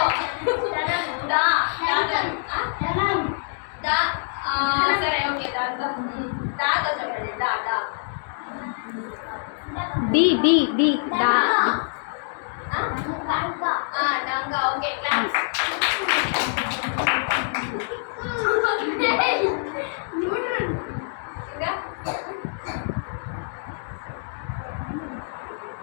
సరే. ఓకే. దాతో చెప్పండి. డి డా. డంగా. ఓకే. క్లాస్. ఇంకా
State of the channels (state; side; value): silent; right; digital silence